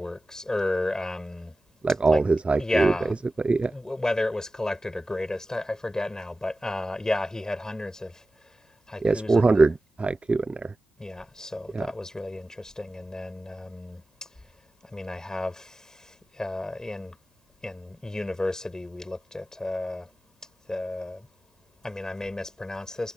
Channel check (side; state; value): both; normal; correlation 0.95